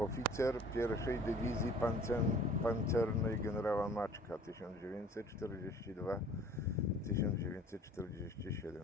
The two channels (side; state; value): both; normal; correlation 0.50